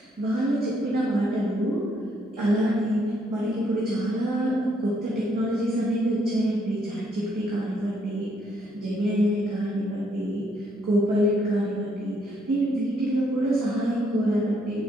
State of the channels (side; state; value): both; normal; correlation 0.71